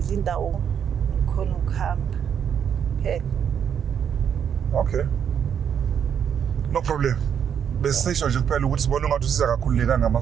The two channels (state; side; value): quieter; left; 8.2 dB